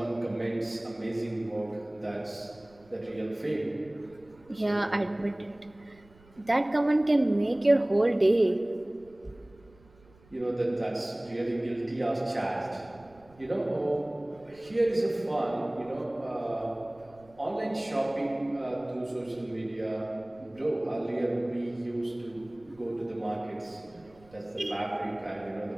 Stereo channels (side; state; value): right; noise; rumble, 27 dB below the sound